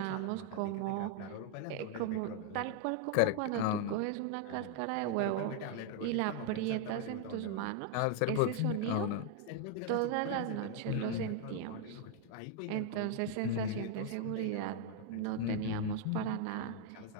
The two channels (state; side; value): different; both; correlation 0.00